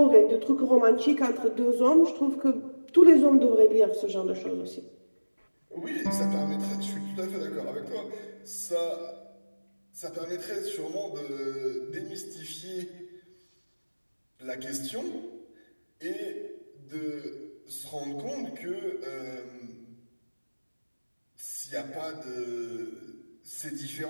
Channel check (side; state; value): both; inverted; correlation -1.00